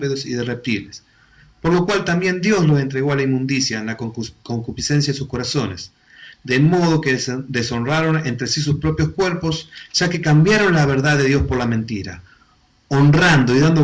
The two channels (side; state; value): both; identical; correlation 1.00